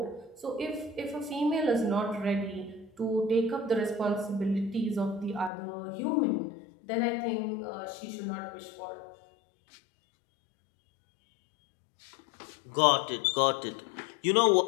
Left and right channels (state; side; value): drops out; right; at 5.5 s